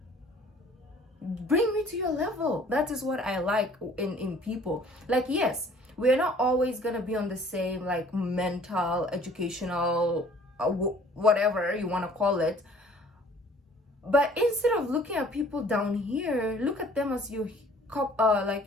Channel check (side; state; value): both; normal; correlation 0.54